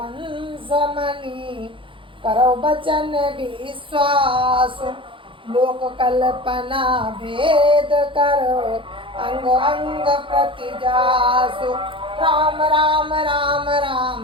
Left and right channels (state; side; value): late; left; 0.25 ms